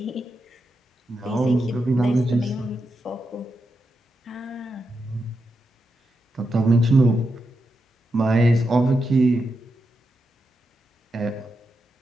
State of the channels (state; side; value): normal; both; correlation 0.86